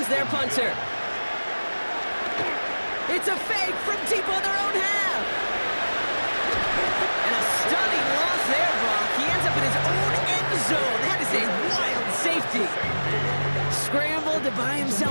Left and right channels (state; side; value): inverted; both; correlation -1.00